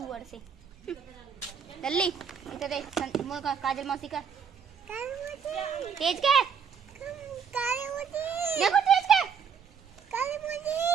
से। जल्दी इधर देख। काजल मौसी का तेज के देखो, तेज के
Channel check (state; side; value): quieter; left; 6.9 dB